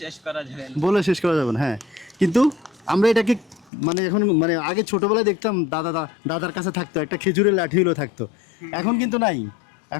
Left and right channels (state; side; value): drops out; right; at 3.7 s